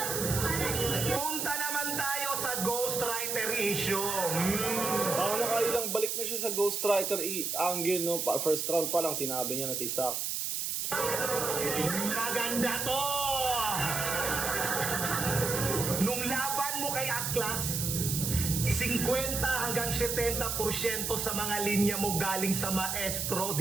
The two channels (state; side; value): noise; right; hiss, 1 dB below the sound